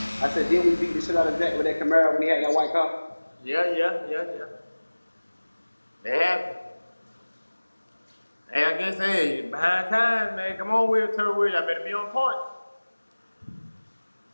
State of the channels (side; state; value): both; inverted; correlation -1.00